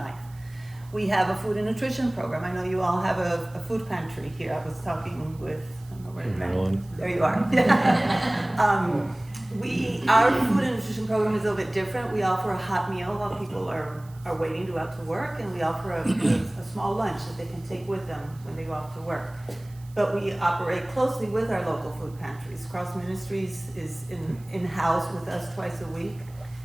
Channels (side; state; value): right; noise; hiss, 26 dB below the sound